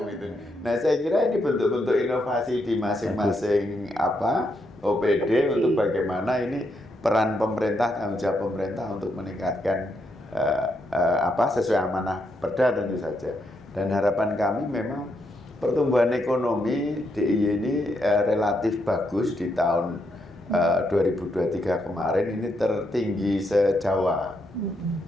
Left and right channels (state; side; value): normal; both; correlation 0.79